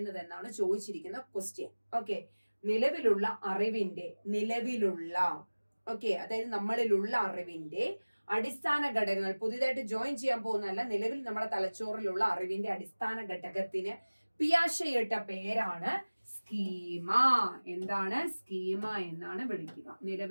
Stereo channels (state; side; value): inverted; both; correlation -1.00